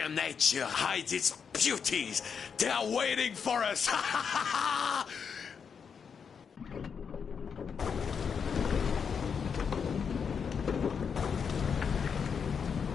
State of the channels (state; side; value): quieter; right; 6.5 dB